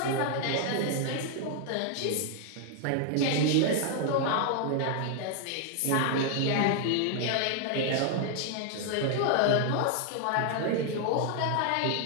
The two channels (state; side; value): different; both; correlation 0.00